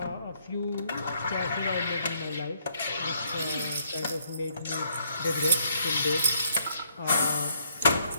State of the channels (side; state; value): both; inverted; correlation -0.71